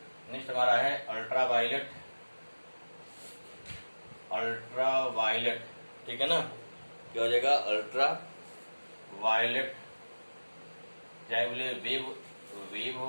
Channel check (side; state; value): both; inverted; correlation -1.00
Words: नेक्स्ट हमारा है अल्ट्रा वायलेट, ठीक है ना। क्या हो जाएगा, अल्ट्रा वायलेट, चाहे बोले वेव